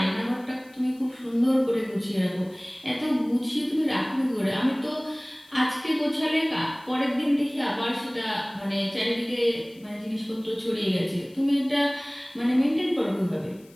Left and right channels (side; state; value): left; noise; hiss, 28 dB below the sound